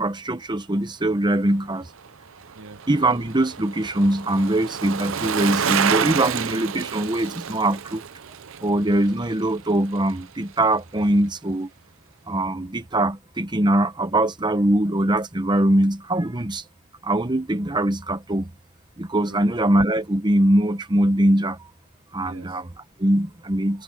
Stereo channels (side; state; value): both; normal; correlation 0.71